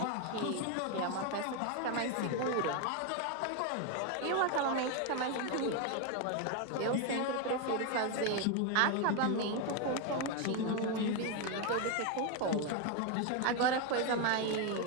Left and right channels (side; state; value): both; different; correlation 0.02